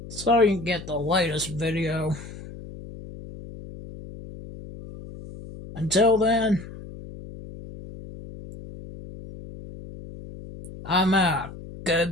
So you can get the latest video. Until then, I'm out.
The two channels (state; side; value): noise; left; hum, 14 dB below the sound